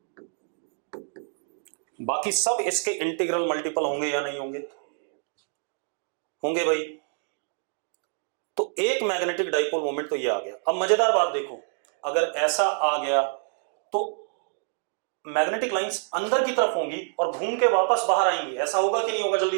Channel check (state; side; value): silent; left; 59 dB below the other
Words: बाकी सब इसके इंटीग्रल मल्टीपल होंगे या नहीं होंगे, होंगे भाई। तो एक मैग्नेटिक डाइपोल मोमेंट तो ये आ गया। अब मजेदार बात देखो, अगर ऐसा आ गया तो मैग्नेटिक लाइंस अंदर की तरफ होंगी और घूम के वापस बाहर आएंगी, ऐसा होगा कि नहीं होगा, जल्दी